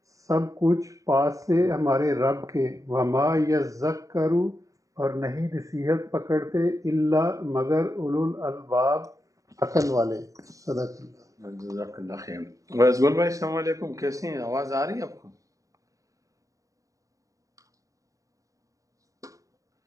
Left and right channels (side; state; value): left; late; 0.16 ms